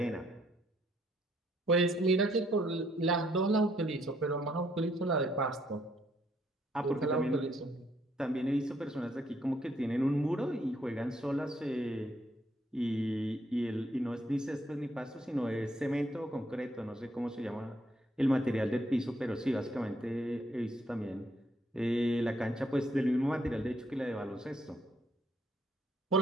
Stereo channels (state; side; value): normal; both; correlation 0.70